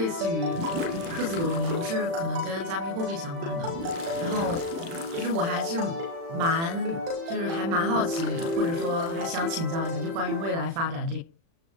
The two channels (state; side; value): late; left; 36 ms